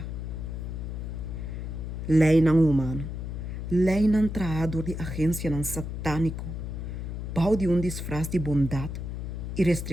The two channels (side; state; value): left; noise; hum, 6 dB below the sound